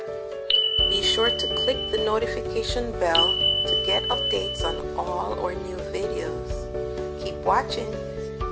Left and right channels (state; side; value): identical; both; correlation 1.00